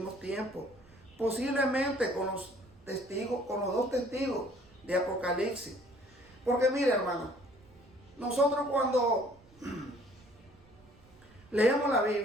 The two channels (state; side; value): noise; right; rumble, 27 dB below the sound